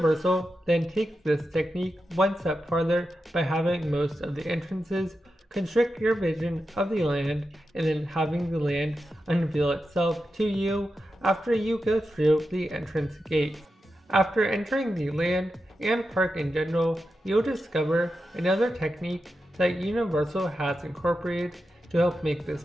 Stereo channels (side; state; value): both; normal; correlation 0.89